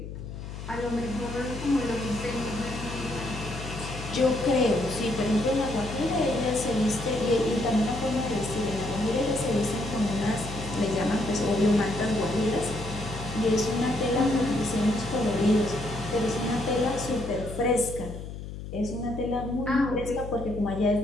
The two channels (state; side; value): noise; left; hum, 10 dB below the sound